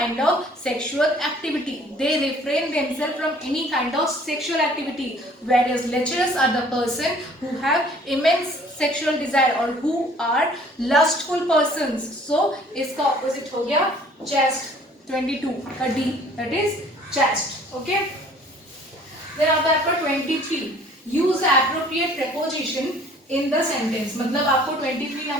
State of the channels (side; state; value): both; normal; correlation 0.54